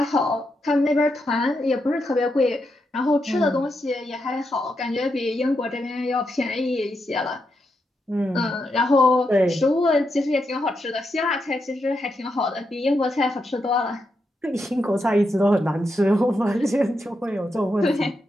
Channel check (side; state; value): both; normal; correlation 0.84